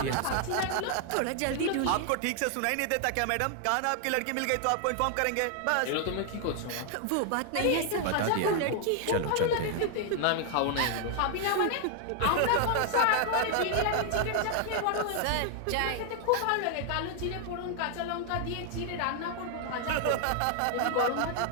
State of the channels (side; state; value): both; different; correlation 0.00